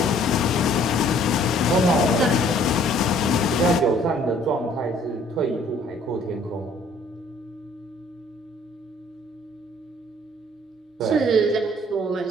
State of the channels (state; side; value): normal; both; correlation 0.58